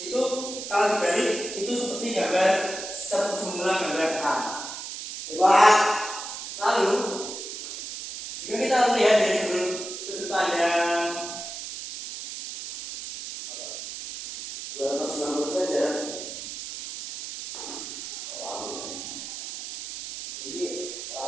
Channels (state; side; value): noise; right; hiss, 8 dB below the sound